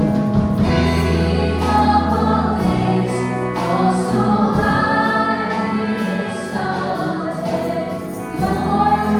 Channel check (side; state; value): both; identical; correlation 1.00